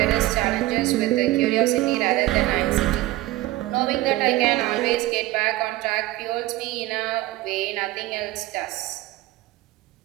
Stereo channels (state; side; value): quieter; left; 17.3 dB